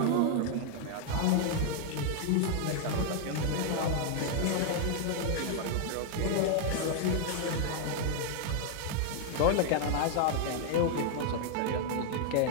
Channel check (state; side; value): different; both; correlation 0.00